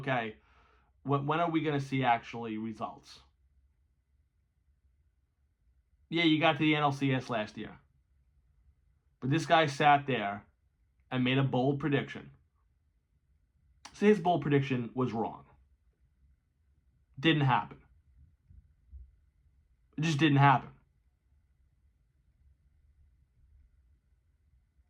when are we going to see actually results? Yeah, you got to the NLCS last year. But this guy sat there and made a bold prediction. So his bold prediction was wrong. Didn't happen. It just didn't happen.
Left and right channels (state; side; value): identical; both; correlation 1.00